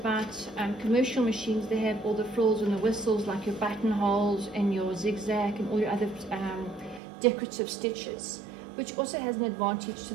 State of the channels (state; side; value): drops out; left; at 7.0 s